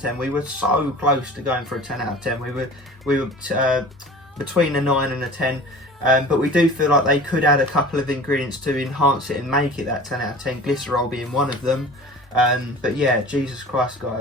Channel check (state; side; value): normal; both; correlation 0.41